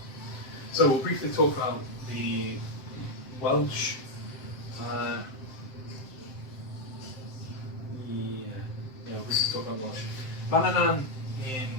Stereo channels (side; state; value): right; late; 7.7 ms